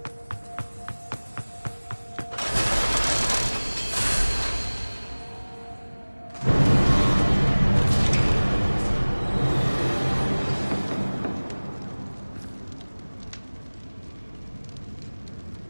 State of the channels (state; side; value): inverted; both; correlation -1.00